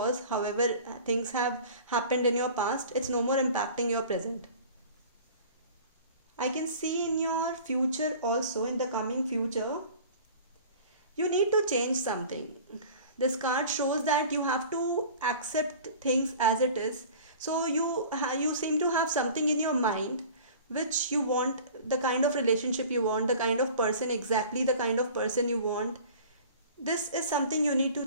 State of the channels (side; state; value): both; inverted; correlation -0.43